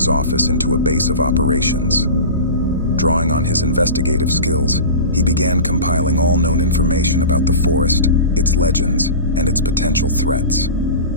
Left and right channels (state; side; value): inverted; both; correlation -0.31